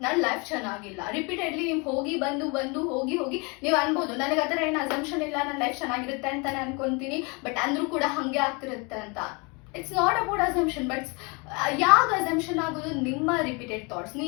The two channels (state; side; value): quieter; right; 30.1 dB